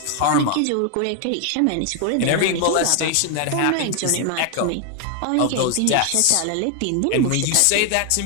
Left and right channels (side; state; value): both; different; correlation 0.00